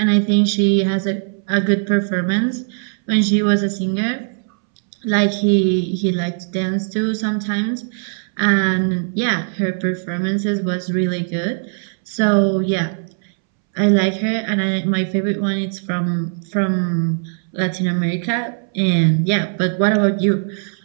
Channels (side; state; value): left; silent; 66 dB below the other